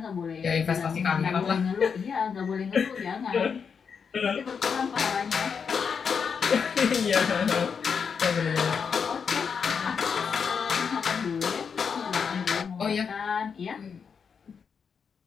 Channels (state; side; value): quieter; right; 6.3 dB